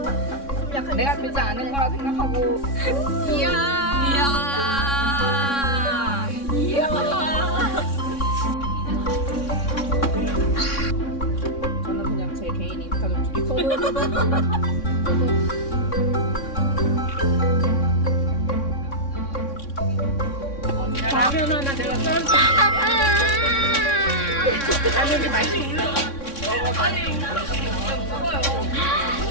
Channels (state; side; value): late; right; 3.6 ms